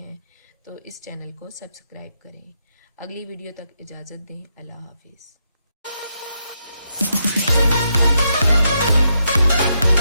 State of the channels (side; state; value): both; inverted; correlation -0.81